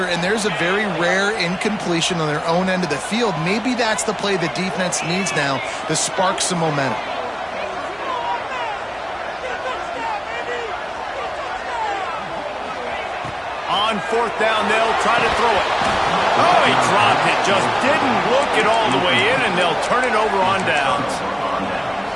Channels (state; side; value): identical; both; correlation 1.00